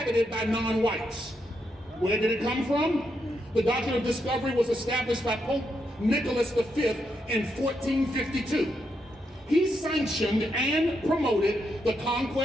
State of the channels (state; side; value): normal; both; correlation 0.81